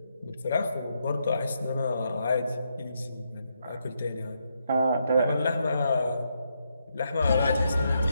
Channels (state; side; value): inverted; both; correlation -0.80